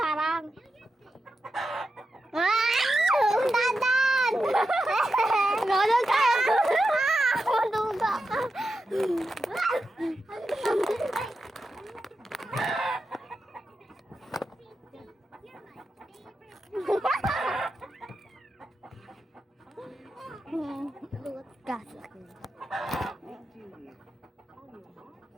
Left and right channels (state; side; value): normal; both; correlation 0.89